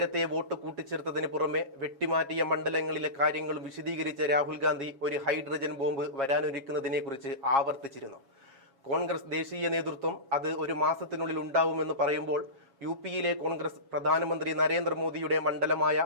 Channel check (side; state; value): left; late; 7.3 ms